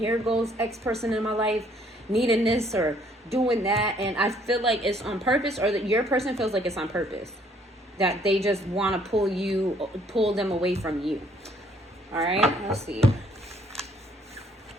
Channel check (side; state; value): both; normal; correlation 0.64